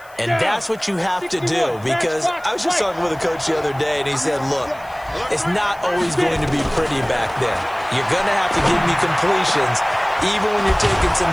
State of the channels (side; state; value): left; noise; hiss, 27 dB below the sound